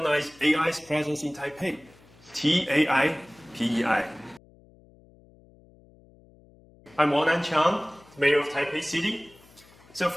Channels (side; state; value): left; noise; hum, 27 dB below the sound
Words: AI's presence in Taipei. TAIPEI. I'm Wan-an Chiang, Mayor of Taipei City. So